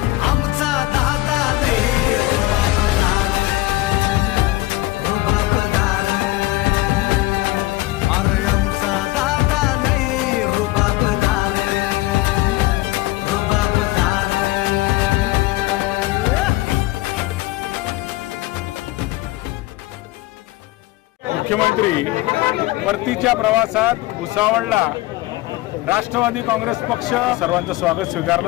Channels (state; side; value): quieter; right; 18.9 dB